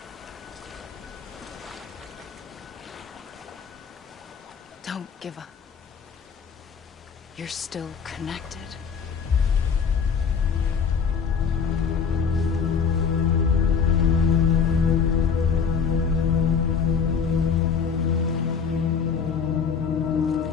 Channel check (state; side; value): quieter; right; 6.3 dB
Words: Don't give up. You're still connected.